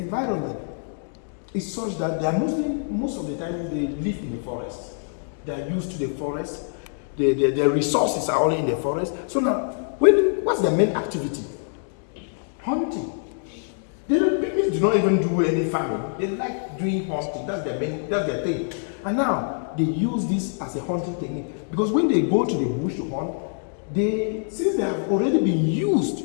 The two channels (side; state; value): right; silent; digital silence